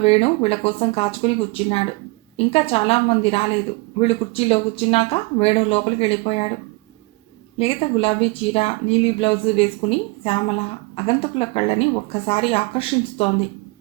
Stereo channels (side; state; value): left; quieter; 25.0 dB